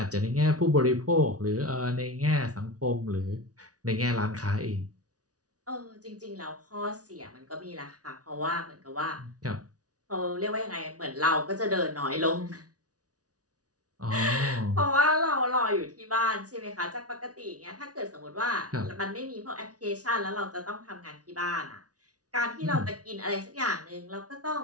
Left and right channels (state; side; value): late; left; 0.68 ms